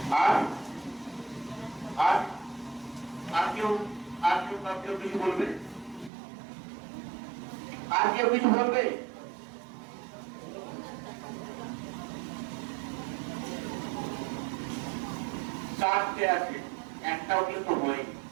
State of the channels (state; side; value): drops out; left; at 6.1 s